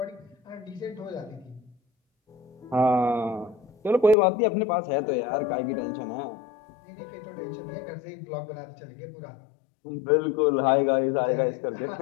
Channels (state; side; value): drops out; right; at 4.2 s